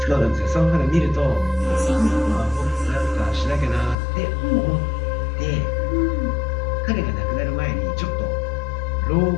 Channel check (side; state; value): right; drops out; at 4.0 s